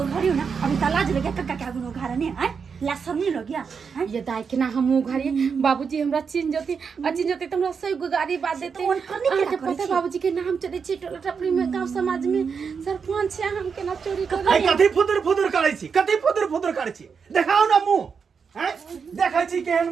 अभी त लाज लगे कक्का के आगु घारा ने आय ला सब नहीं लग गया हैं? ये दाई के ना हम घरे बाबूजी हमरा चिन जति त हमरा सही गुगारी बात देते तो उन करने के आके ना पता करी बाबूजी के नाम चले छी टोला टपरी में गांव समाज में सरपंच है हम के ना चोरी कर आई कथी फुदुर करै छी कथी फुदुर करै छी देखाओ ना मुंह हैं देखै छी केहन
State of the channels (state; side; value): quieter; left; 6.0 dB